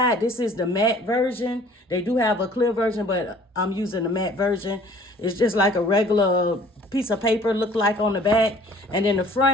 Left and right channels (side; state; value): both; normal; correlation 0.53